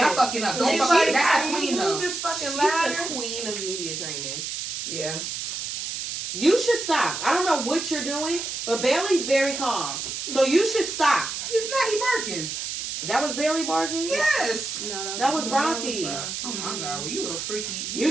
fucking up. Don't She's fuck like, that's how the do queen you though. move this fucking She's ladder? the queen of media training. Yeah. You should stop. I don't know what you're doing, but Bailey's very calm. So you should stop. He's not. He barking. That was Bailey barking? Yes. No, That was Rocky. Oh my god, well you little freaky. You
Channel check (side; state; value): right; noise; hiss, 5 dB below the sound